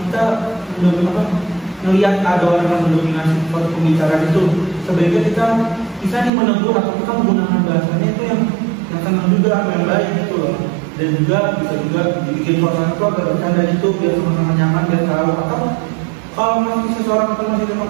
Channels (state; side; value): drops out; left; at 6.3 s